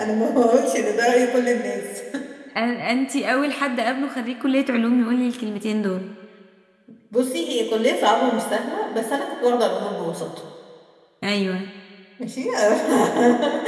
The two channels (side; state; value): both; identical; correlation 1.00